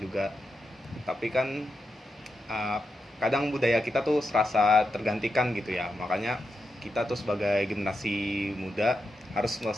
Tapi kan kadang budaya kita tuh serasa tergantikan gitu ya, makanya kita tuh sebagai generasi muda harus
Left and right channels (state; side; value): normal; both; correlation 0.87